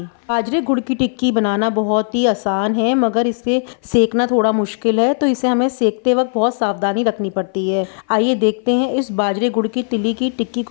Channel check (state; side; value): silent; right; 58 dB below the other